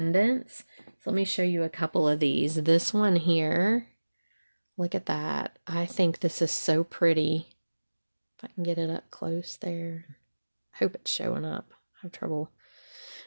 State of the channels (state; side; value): inverted; both; correlation -1.00